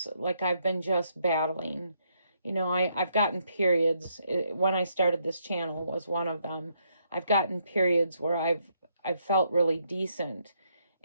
like I've been just battling. You know, I've gotten periods. When I started this channel was one of them. I've gotten periods where I've felt really decent.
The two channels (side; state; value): both; inverted; correlation -0.75